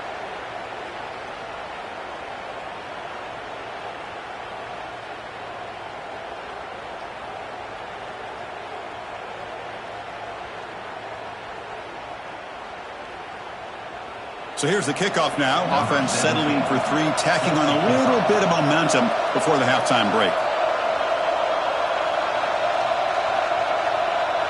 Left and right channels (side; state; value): both; identical; correlation 1.00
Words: So here's the kickoff now. Offense settling for 3, tacking on a little bit of momentum before the halftime break.